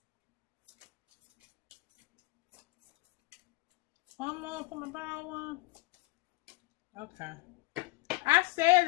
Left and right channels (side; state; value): right; quieter; 23.2 dB